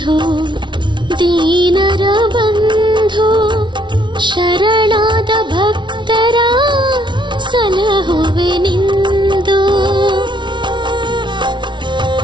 ದೀನರ ಬಂಧು, ಶರಣಾದ ಭಕ್ತರ ಸಲಹುವೆ ನಿಂದು.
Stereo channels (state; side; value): late; left; 0.23 ms